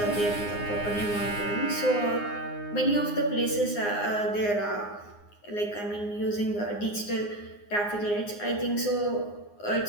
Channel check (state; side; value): late; right; 9.7 ms